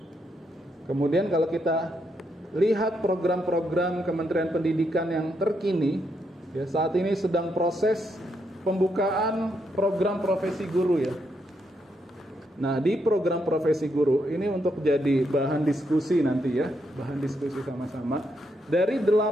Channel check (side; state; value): both; normal; correlation 0.79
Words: Kemudian kalau kita lihat program-program Kementerian Pendidikan yang terkini, ya saat ini sedang proses pembukaan program profesi guru ya. Nah, di program profesi guru ini untuk jadi bahan diskusi nanti ya, bahan diskusi sama-sama. Dari